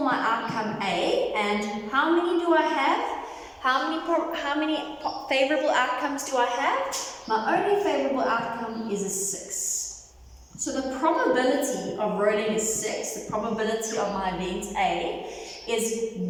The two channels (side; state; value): both; identical; correlation 1.00